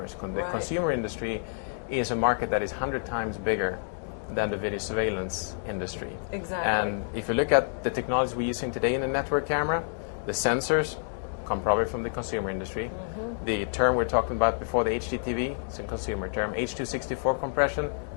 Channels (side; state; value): right; silent; digital silence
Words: The Right. consumer industry is a market that is 100 times bigger than the video surveillance industry. Exactly. And if you look at the technology we're using today in the network camera, the sensors come probably from the consumer industry. The term we're talking about before, the HDTV, it's a consumer term. H.264 compression,